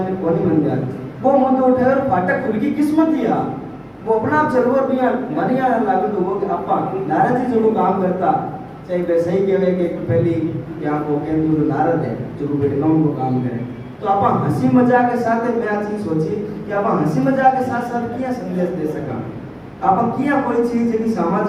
को नहीं बन जाती। वो मुद्दो उठे और फाटक खुल की किस्मत दिया, वो अपना आप चलो और भी मन यहाँ लागू तो वो कि आपा नाराज जी जो काम करता चाहे वे सही कहे कि पहली क्या को केंद्र जो नारद है जो बेटगांव को काम करे तो आप हंसी मजाक के साथ मैं आ चीज सोची कि आप हंसी मजाक के साथ साथ क्या संदेश दे सका आप क्या कोई चीज है कि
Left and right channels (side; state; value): both; identical; correlation 1.00